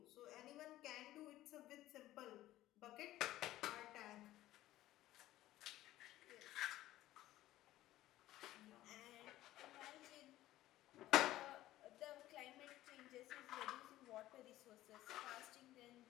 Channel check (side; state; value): right; quieter; 15.1 dB